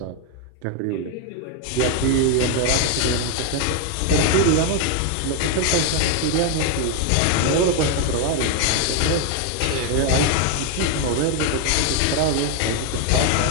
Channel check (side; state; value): both; different; correlation 0.01